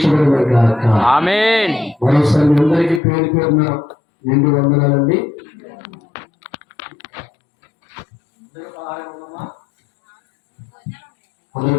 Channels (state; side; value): drops out; right; at 3.0 s